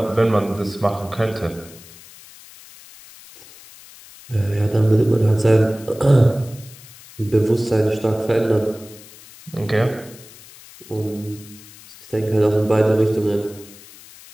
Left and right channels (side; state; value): left; noise; hiss, 21 dB below the sound